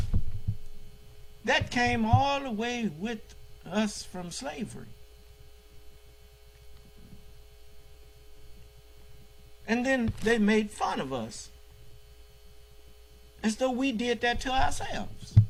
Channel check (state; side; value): identical; both; correlation 1.00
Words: That came all the way with us from slavery. And then they made fun of us as though we did that to ourselves.